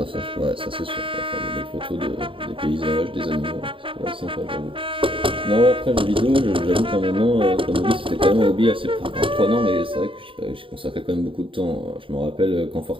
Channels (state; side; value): late; left; 0.25 ms